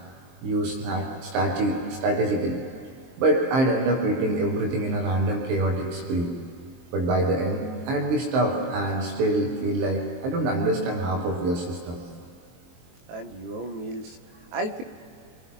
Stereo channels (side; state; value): left; late; 23 ms